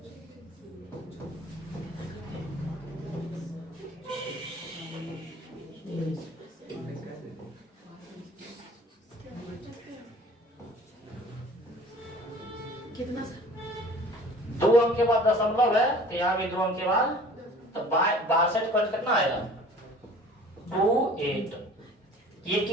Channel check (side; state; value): both; normal; correlation 0.47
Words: कितना सर, 2 अंक के बाद दशमलव है, तो यहाँ भी 2 अंक के बाद, तो 62 पॉइंट कितना आया 28। ये